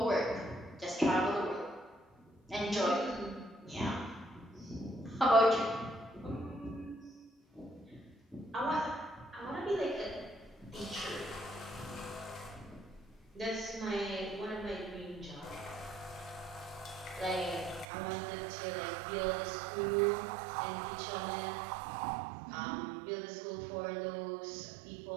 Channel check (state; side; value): drops out; left; at 17.9 s